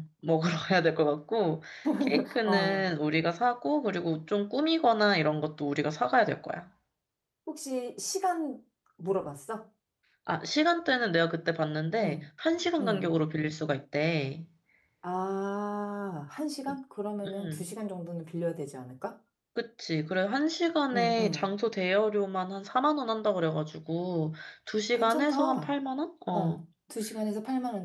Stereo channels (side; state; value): both; identical; correlation 1.00